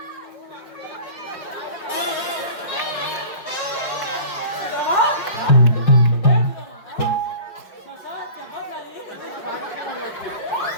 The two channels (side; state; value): right; late; 5.5 ms